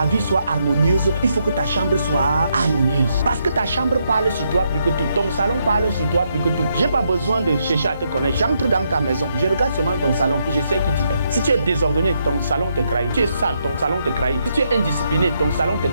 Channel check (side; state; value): both; inverted; correlation -0.78